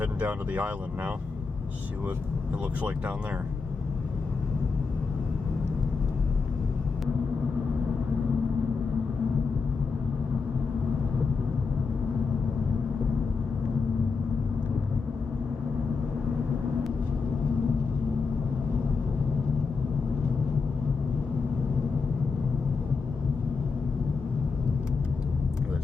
down to the island now. See what it looks like down there. Look at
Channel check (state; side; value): quieter; right; 4.7 dB